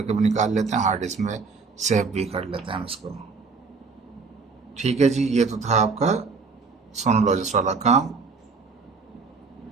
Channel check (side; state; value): left; quieter; 4.7 dB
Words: भी निकाल लेते हैं, हार्ड डिस्क में सेव भी कर लेते हैं हम इसको। ठीक है जी, ये तो था आपका सोनोलॉजिस्ट वाला काम,